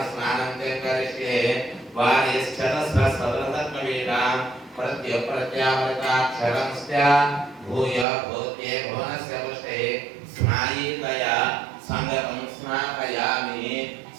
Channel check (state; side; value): drops out; left; at 8.1 s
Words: స్నానం చ కరిష్యే వారిశ్చతస్రసదృతత్వవేదా ప్రత్యప్రత్యామృతాక్షరంస్య భూయ భూత్యే భువనస్య పుష్టే స్నాయీతయా సంగతం స్నాపయామి